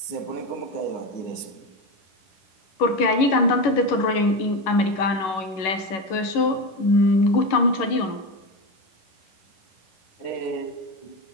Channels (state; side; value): late; right; 11 ms